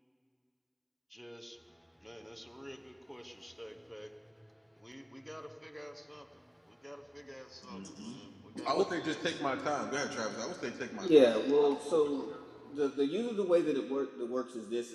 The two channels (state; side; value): identical; both; correlation 1.00